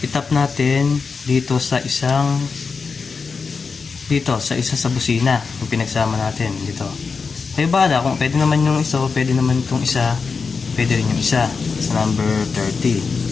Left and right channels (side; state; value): right; quieter; 5.0 dB